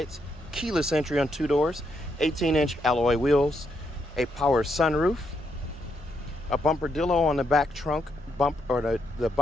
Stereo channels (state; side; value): normal; both; correlation 0.78